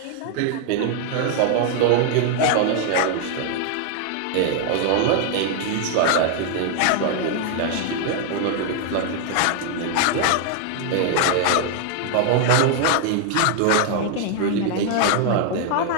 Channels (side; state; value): both; different; correlation 0.00